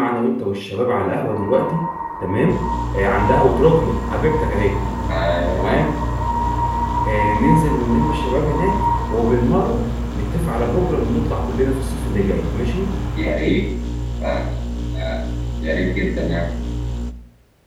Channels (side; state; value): both; identical; correlation 1.00